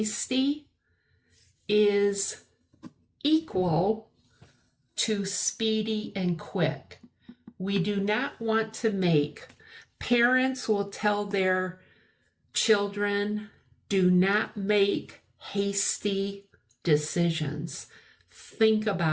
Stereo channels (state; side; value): identical; both; correlation 1.00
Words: is equal to speedy and quick. We do not want to make, parents will tell their children, do not make hasty decisions. Think